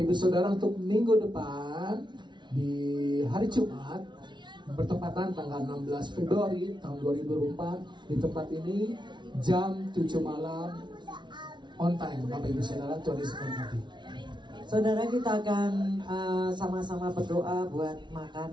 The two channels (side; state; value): left; late; 0.22 ms